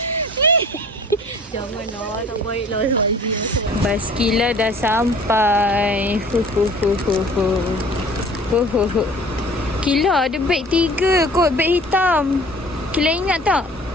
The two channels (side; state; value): both; normal; correlation 0.48